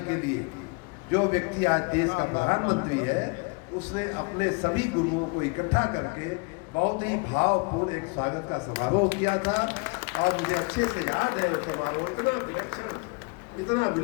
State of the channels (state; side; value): quieter; right; 32.0 dB